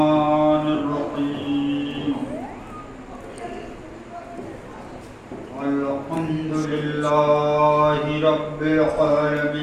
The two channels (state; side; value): identical; both; correlation 1.00